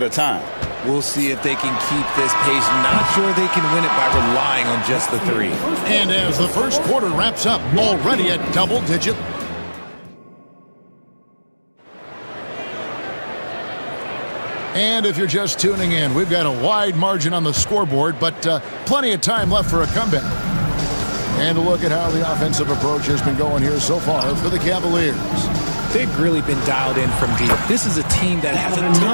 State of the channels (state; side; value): inverted; both; correlation -1.00